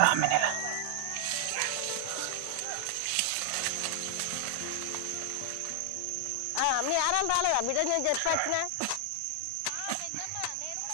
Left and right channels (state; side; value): different; both; correlation 0.00